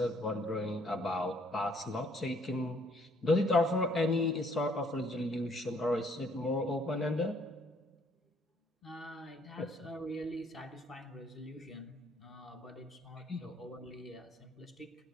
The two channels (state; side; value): normal; both; correlation 0.64